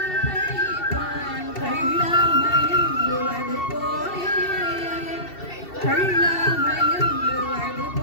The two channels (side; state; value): right; late; 2.7 ms